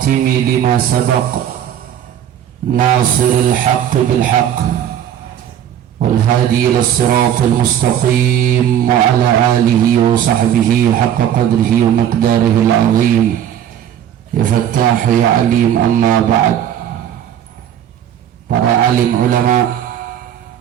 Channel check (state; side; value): quieter; left; 10.1 dB